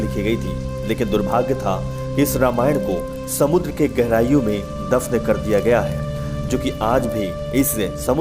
गई थी। लेकिन दुर्भाग्य था कि इस रामायण को समुद्र के गहराइयों में दफन कर दिया गया है, जो कि आज भी इस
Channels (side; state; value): both; identical; correlation 1.00